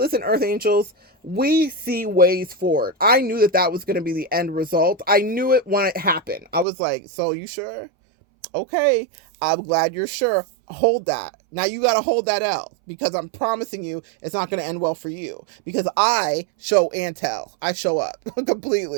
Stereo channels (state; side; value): drops out; left; at 6.7 s